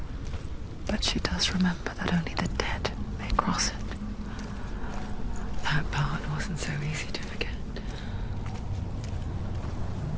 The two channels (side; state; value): both; identical; correlation 1.00